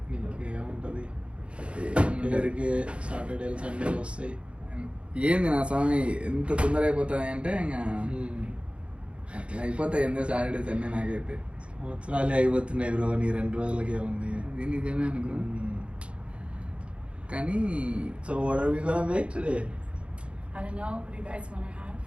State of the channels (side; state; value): left; late; 0.059 ms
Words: ఇంకేముంటుంది అందరికీ సాటర్డేలు సండేలు వస్తాయి. ఏంది నా స్వామి ఎంత తొందర అయిపోతాయి అంటే ఇంకా అట్లా అయిపోతాయి ఎందుకు సాటర్డే సండే నాకైతే సంవత్సరాలే అయిపోతున్నాయి బ్రో నీ 2 రోజులకే ఉంది. ఇది నిజమే అనుకో కానీ so what are we gonna make today? I don't know. What do you guys want to have?